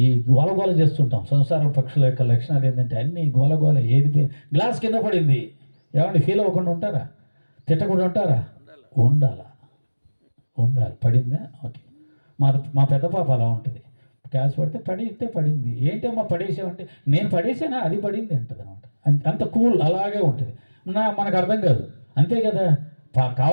ఈ గోలగోల చేస్తుంటాం. సంసారం పక్షుల యొక్క లక్షణాలు ఏంటంటే అన్నీ గోలగోల. ఏది గ్లాస్ కింద పడింది, ఏమంటే ఫీల్ అవ్వకుండా ఉంటారా? తిట్టకుండా ఉంటారా? ఉండాలి. పడిందా? ఓకే. మా పెద్ద పాప అలా ఉంటుంది. గ్యాస్ పడితే పడింది, ఏంటమ్మా పడేసామంటే, నేను పడేసానా, అది పడింది అంటుంది అనమాట. అంత కూల్ అలాగే ఉంటుంది. మనకు అర్థం కాదు, అంతే కదా,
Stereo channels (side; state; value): both; inverted; correlation -1.00